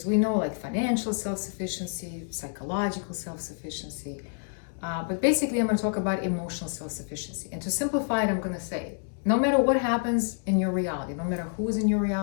we know like financial self-sufficiency, psychological self-sufficiency, but basically I'm going to talk about emotional self-sufficiency. And to simplify it, I'm going to say no matter what happens in your reality, no matter who's in your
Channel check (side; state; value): right; silent; 59 dB below the other